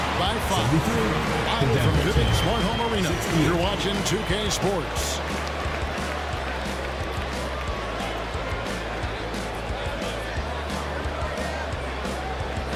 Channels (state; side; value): identical; both; correlation 1.00